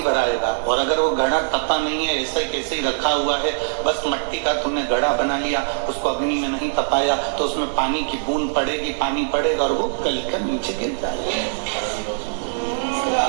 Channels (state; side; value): silent; left; 64 dB below the other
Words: भराएगा, और अगर वो घड़ा तपा नहीं है, ऐसे कैसे ही रखा हुआ है, बस मट्टी का तुमने घड़ा बना लिया, उसको अग्नि में नहीं तपाया, तो उसमें पानी की बूंद पड़ेगी, पानी पड़ेगा और वो गलकर नीचे गिर जाएगा।